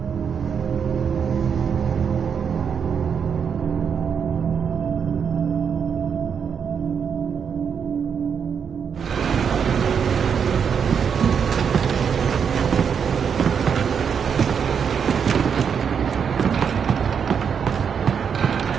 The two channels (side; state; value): left; quieter; 7.0 dB